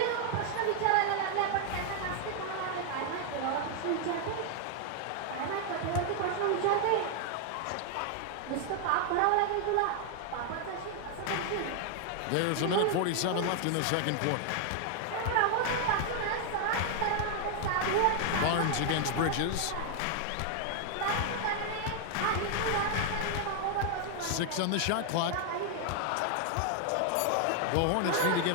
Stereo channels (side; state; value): both; different; correlation 0.00